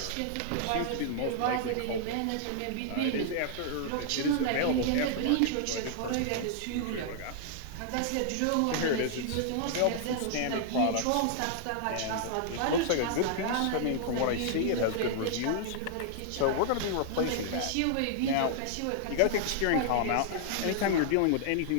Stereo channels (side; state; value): both; different; correlation -0.01